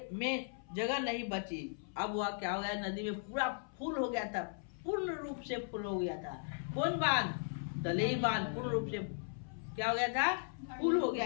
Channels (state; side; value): silent; right; 53 dB below the other